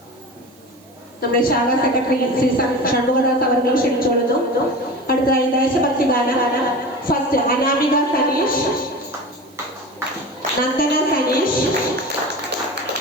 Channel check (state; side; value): noise; right; hiss, 29 dB below the sound